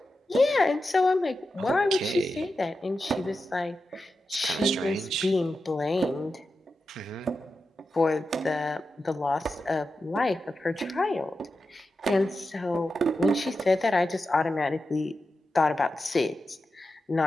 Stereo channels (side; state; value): both; normal; correlation 0.90